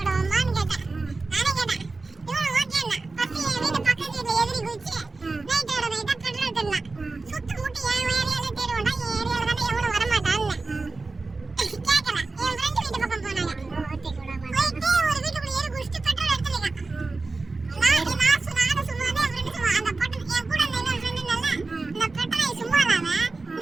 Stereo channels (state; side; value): quieter; left; 3.7 dB